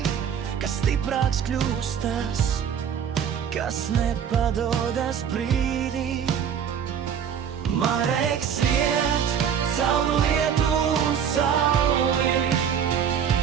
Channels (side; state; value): left; quieter; 8.1 dB